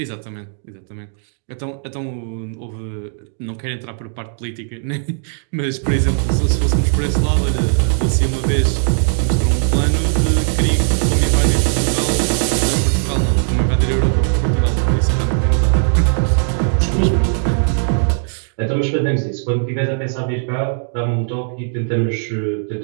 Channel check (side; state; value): left; silent; digital silence